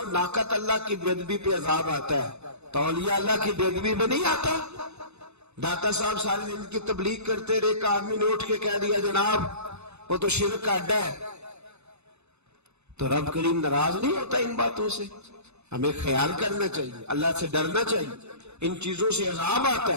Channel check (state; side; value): late; left; 0.81 ms